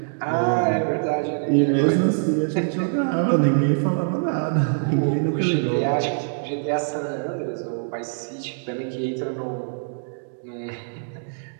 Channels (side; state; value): left; silent; digital silence